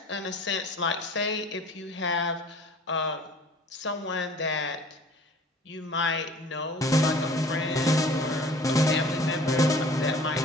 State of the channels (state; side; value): normal; both; correlation 0.48